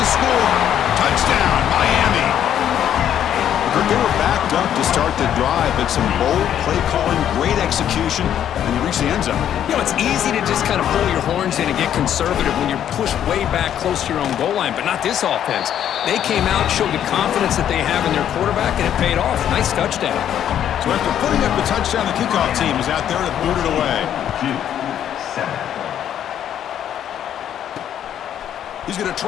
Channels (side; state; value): right; quieter; 10.2 dB